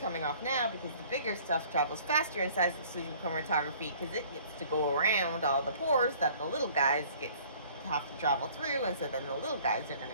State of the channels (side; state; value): both; inverted; correlation -0.53